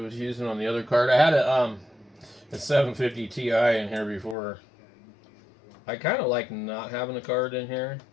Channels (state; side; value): drops out; right; at 4.4 s